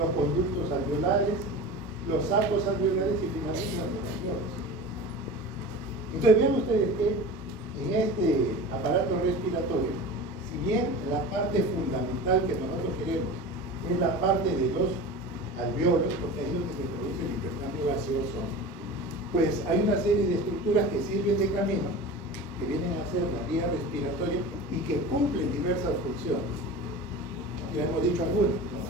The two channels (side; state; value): both; normal; correlation 0.33